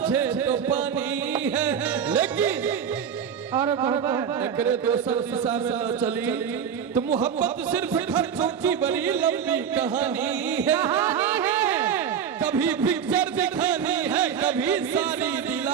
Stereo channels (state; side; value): quieter; left; 7.8 dB